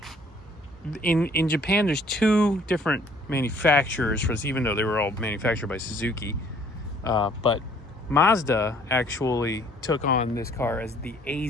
in Japan, there's two different manufacturers for this, even though they were all manufactured by Suzuki. But Mazda actually took on this car as the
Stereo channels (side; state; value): both; normal; correlation 0.59